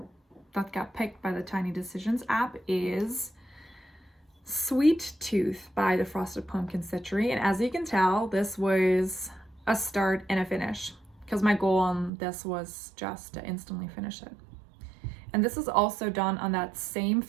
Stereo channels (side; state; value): left; drops out; at 12.1 s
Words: picked by the Tiny Decisions app is Sweet Tooth by the Frosted Pumpkin Stitchery. And as you can tell, this was a start and a finish because my goal on this was just to instantly finish it. And this is also done on that same